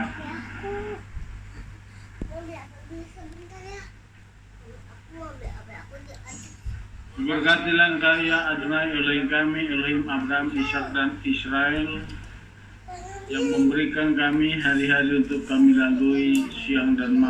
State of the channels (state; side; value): identical; both; correlation 1.00